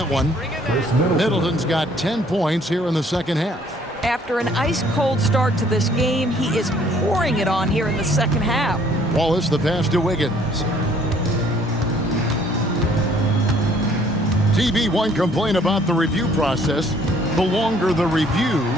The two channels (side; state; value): both; normal; correlation 0.60